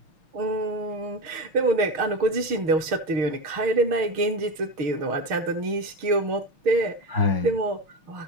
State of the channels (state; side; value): late; left; 6.4 ms